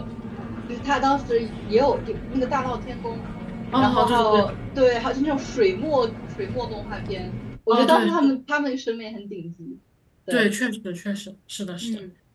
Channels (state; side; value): identical; both; correlation 1.00